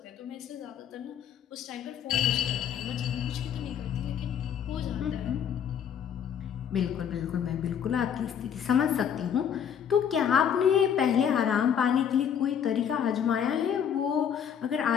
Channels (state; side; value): quieter; right; 8.4 dB